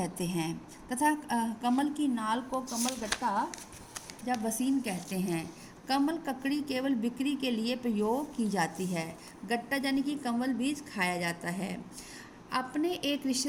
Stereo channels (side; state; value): both; identical; correlation 1.00